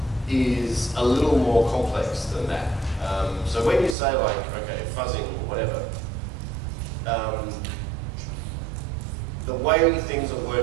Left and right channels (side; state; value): left; drops out; at 4.0 s